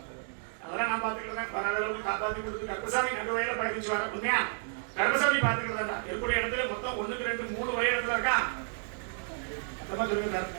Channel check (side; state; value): left; silent; 57 dB below the other